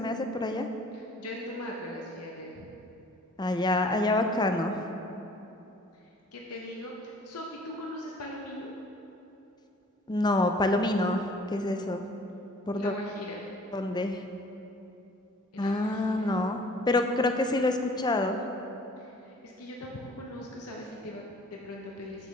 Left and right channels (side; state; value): both; normal; correlation 0.52